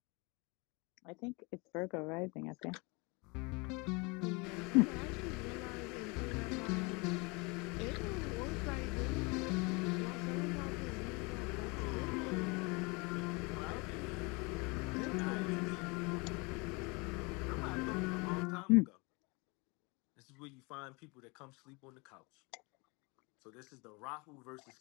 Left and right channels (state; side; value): quieter; right; 28.5 dB